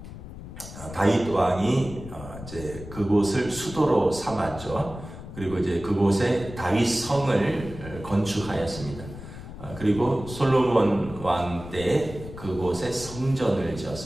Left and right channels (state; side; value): noise; left; rumble, 13 dB below the sound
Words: 다윗 왕이 이제 그곳을 수도로 삼았죠. 그리고 이제 그곳에 다윗 성을 건축하였습니다. 그리고 솔로몬 왕 때 그곳에 성전을